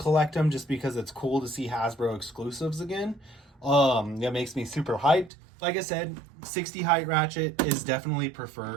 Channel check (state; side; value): drops out; left; at 5.3 s